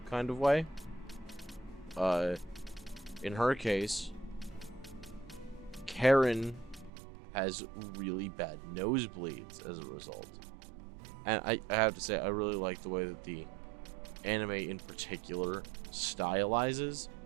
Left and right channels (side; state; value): left; drops out; at 6.9 s